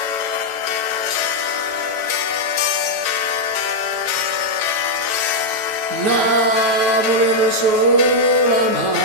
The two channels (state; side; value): late; left; 9.3 ms